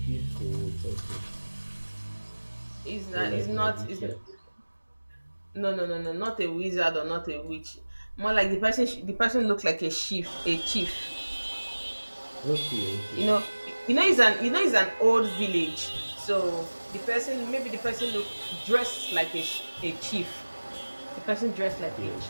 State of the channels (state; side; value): inverted; both; correlation -1.00